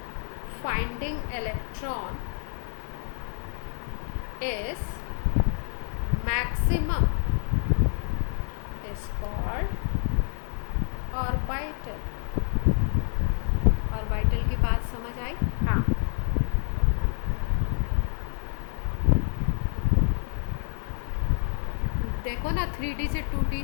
finding electron is maximum is called orbital। Orbital की बात समझ आई? हाँ, देखो ना 3D से 2D,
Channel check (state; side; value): silent; right; digital silence